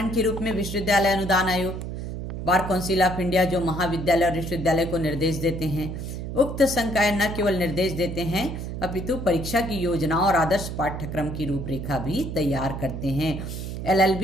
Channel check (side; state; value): right; noise; hum, 6 dB below the sound